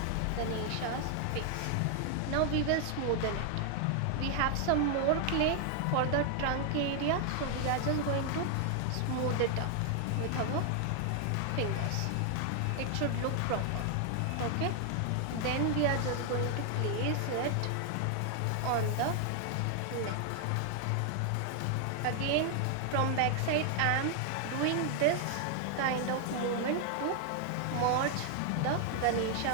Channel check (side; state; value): both; different; correlation 0.00